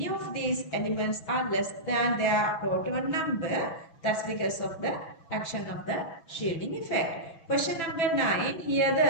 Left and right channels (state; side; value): late; right; 6.1 ms